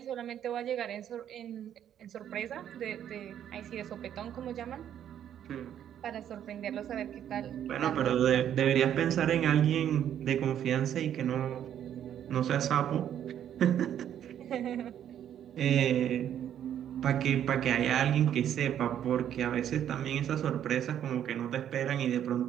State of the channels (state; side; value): quieter; left; 10.1 dB